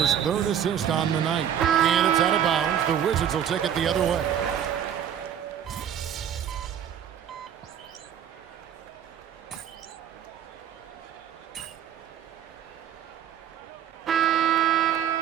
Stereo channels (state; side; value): quieter; left; 9.5 dB